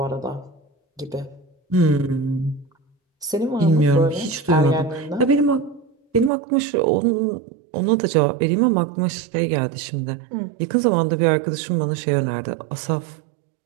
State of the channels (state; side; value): drops out; left; at 6.3 s